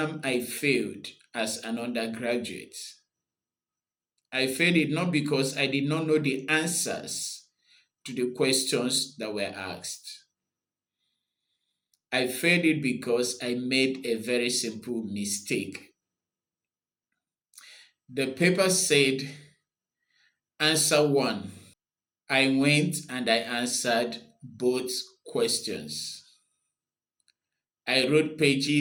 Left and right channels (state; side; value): identical; both; correlation 1.00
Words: I failed as an undergraduate. I failed it not because I did not know the answers to the questions that were asked. I failed it because I made a very simple mistake. The paper said, answer one. I went and I answered both questions. I wrote